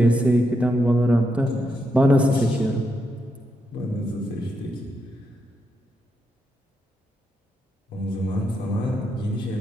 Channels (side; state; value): both; normal; correlation 0.82